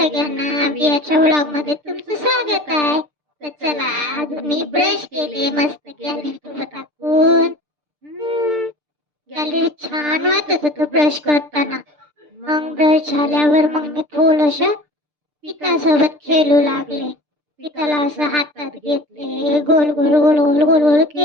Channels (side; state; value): left; late; 6.7 ms